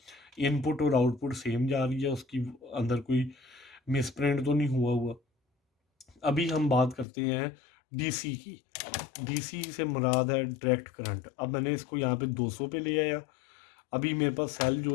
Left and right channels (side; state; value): right; drops out; at 7.1 s